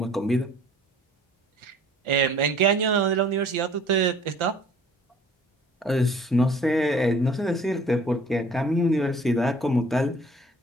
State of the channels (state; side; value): normal; both; correlation 0.53